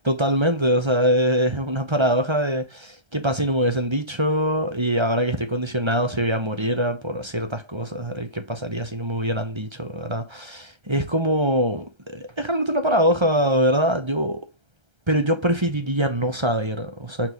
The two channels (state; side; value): late; left; 1.3 ms